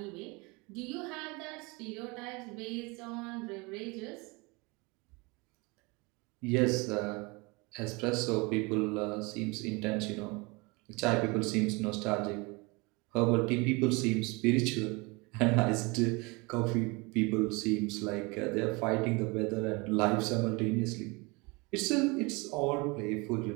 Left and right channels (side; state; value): left; quieter; 26.9 dB